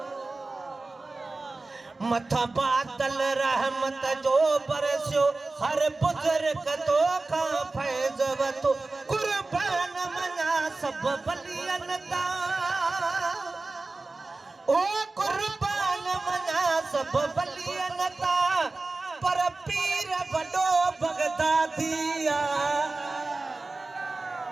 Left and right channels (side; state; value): left; quieter; 3.3 dB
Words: मथा बादल रहमत जो बरसियो हर बुजुर्ग तोखां फैज़ वतो कुर्बान मना सब बलियन ता ओ कुर्बान मना सब बलियन ता पर पीर वडो बगदादिया